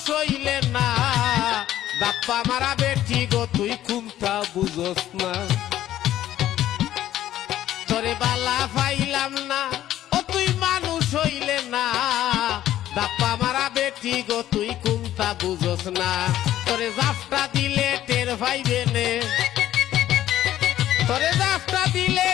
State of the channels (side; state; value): right; quieter; 12.9 dB